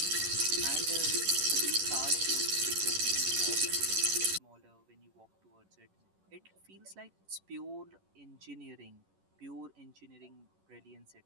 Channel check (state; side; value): late; left; 10 ms